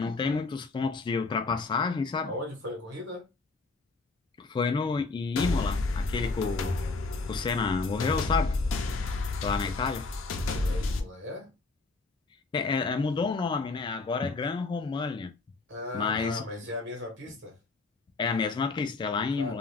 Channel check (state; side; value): quieter; right; 3.8 dB